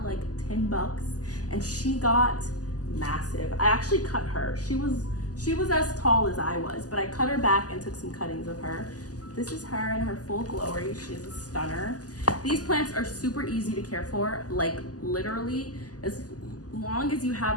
10 bucks, and she got massive. I actually cut her. She was as tall as I was, but I cut her back and took some cuttings of her. This is her in her full glory. She's a stunner. These plants are super easy to care for. Like literally, as long as you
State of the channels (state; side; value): late; right; 0.67 ms